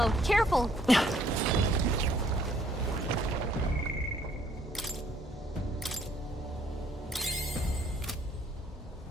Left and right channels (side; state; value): both; normal; correlation 0.64